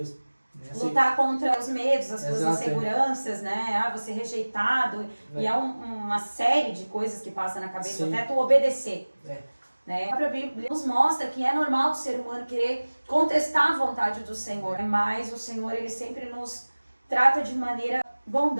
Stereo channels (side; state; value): both; inverted; correlation -1.00